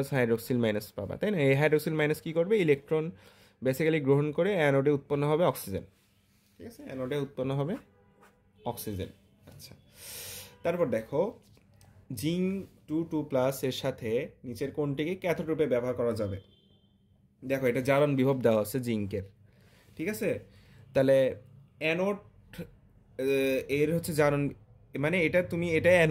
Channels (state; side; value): identical; both; correlation 1.00